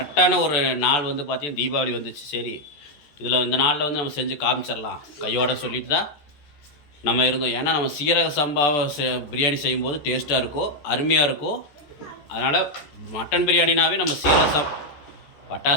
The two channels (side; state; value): right; late; 14 ms